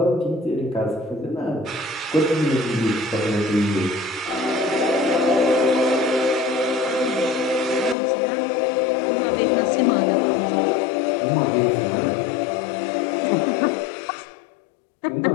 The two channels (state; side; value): drops out; right; at 8.0 s